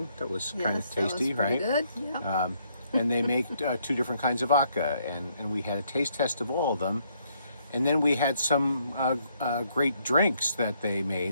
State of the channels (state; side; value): inverted; both; correlation -0.71